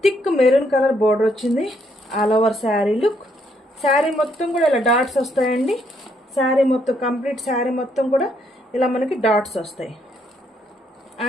థిక్ మెరూన్ కలర్ బార్డర్ వచ్చింది. All over sari look. Sari మొత్తం కూడా ఇలా డాట్స్ వస్తాయండి. శారీ మొత్తం కంప్లీట్ శారీ మొత్తం కూడా ఇలా మనకి డాట్స్ వస్తాయి.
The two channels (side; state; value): both; normal; correlation 0.72